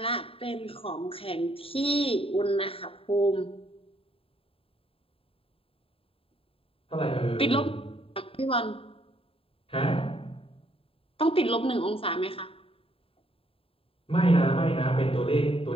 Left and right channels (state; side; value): late; right; 0.27 ms